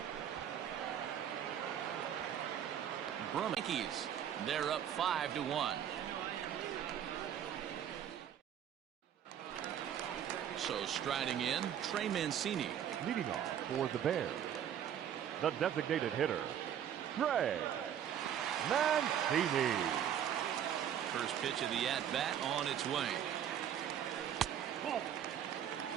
Yankees, they're up 5-1. So striding in, Trey Mancini. Leading off for the Bears, the designated hitter, Trey Mancini. First pitch of the at-bat on its way.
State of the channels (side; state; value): left; quieter; 9.6 dB